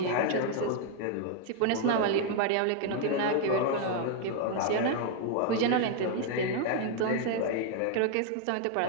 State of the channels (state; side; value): different; both; correlation 0.00